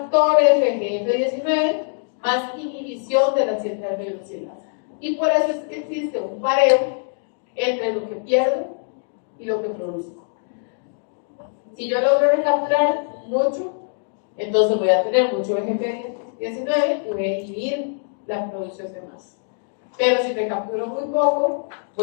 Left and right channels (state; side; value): silent; right; digital silence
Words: FGF19, más inhibición de la 7-alfa-hidroxilasa. Y por eso es que existe un pareo entre lo que pierdo y lo que produzco. Si yo logro recapturar mucho, entonces voy a tener mucho FGF19 y voy a inhibir la producción de más. Pero si recapturo muy poco,